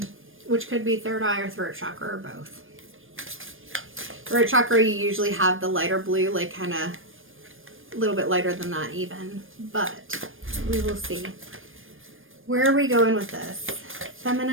which could be third eye or throat chakra or both. Throat chakra, you usually have the lighter blue, like kind of a little bit lighter than that even, but we will see. Where are we going with this?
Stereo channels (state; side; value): late; left; 0.59 ms